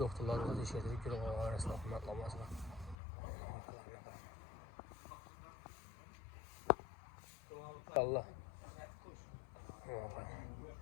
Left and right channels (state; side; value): drops out; right; at 3.0 s